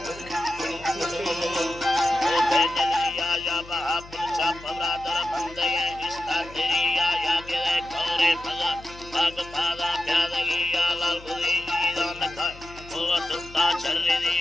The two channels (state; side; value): noise; left; hum, 19 dB below the sound